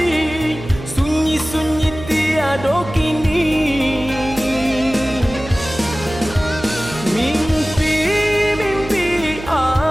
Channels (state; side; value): noise; right; hum, 12 dB below the sound